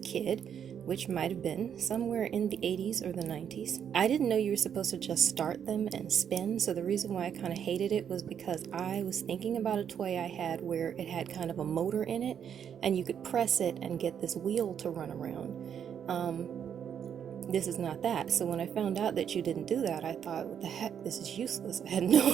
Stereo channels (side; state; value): left; quieter; 8.4 dB